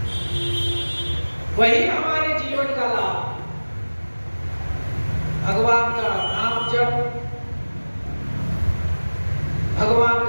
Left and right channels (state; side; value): inverted; both; correlation -1.00